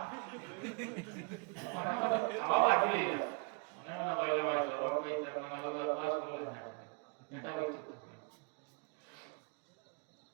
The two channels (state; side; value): quieter; left; 33.9 dB